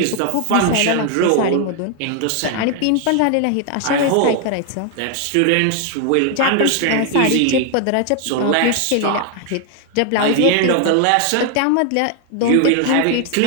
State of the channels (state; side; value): different; both; correlation 0.00